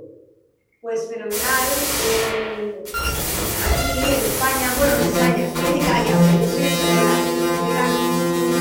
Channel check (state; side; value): identical; both; correlation 1.00